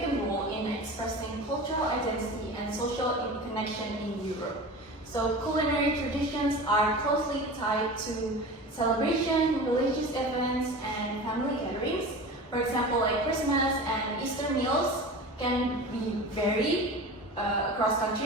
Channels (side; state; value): both; normal; correlation 0.33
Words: role in expressing cultural identity and social connection in Europe. So culinary traditions are closely tied to celebration, religious events, and family gatherings. For example, like Christmas and Easter meals can be varied across